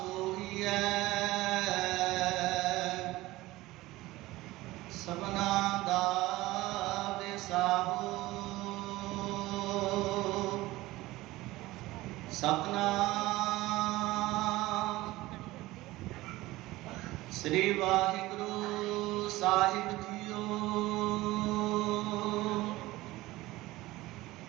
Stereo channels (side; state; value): left; quieter; 18.5 dB